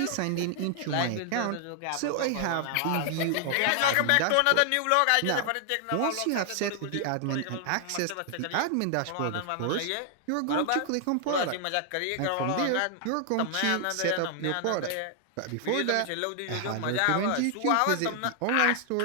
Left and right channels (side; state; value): both; different; correlation 0.00